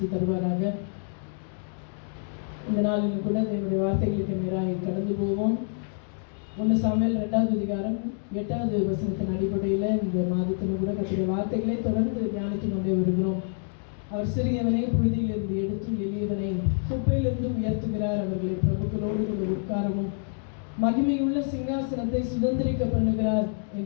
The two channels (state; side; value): silent; right; 60 dB below the other